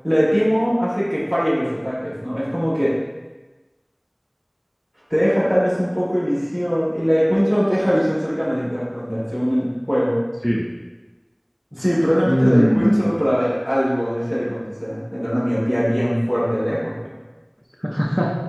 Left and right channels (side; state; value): both; identical; correlation 1.00